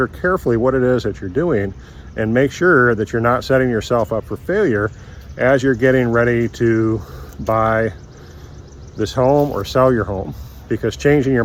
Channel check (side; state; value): both; identical; correlation 1.00